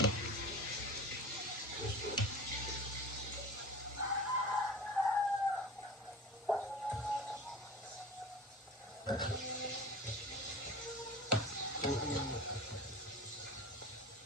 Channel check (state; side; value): normal; both; correlation 0.35